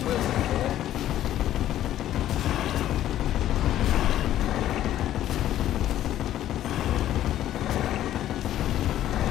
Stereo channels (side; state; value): right; quieter; 12.5 dB